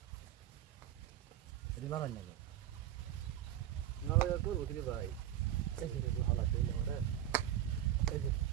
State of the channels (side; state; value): left; quieter; 11.9 dB